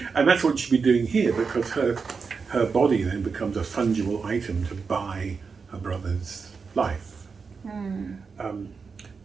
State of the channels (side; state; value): left; quieter; 5.2 dB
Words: And that's what she'd be doing here, because her body then becomes a fungible item to buy her brother's life.